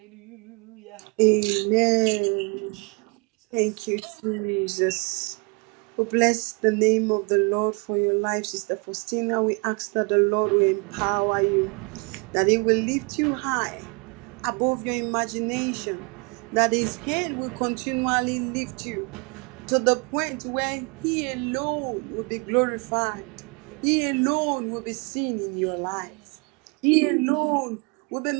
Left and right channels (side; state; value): left; quieter; 32.9 dB